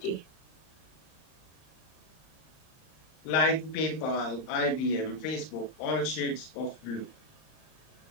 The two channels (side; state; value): right; late; 38 ms